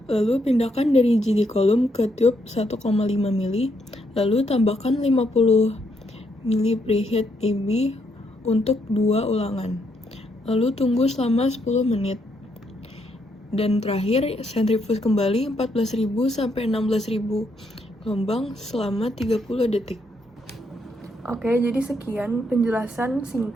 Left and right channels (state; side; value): normal; both; correlation 0.76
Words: Lalu pindahkan dari GD column ke tube 1,5 ml. Lalu tambahkan 50 ml preheat EB untuk 2 ulangan. Lalu tunggu selama 10 menit. Dan terakhir, centrifuge kembali 14.000 sampai 16.000 gelombang selama 30 detik. Oke, jadi sekian penjelasan